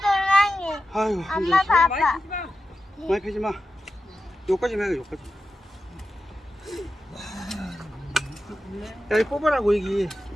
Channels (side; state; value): both; normal; correlation 0.91